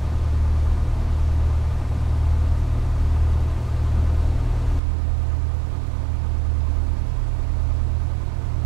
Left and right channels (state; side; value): drops out; left; at 4.8 s